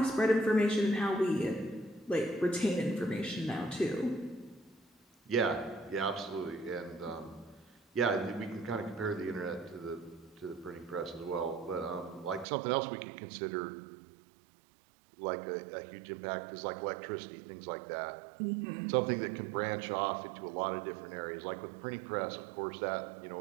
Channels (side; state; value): left; drops out; at 12.5 s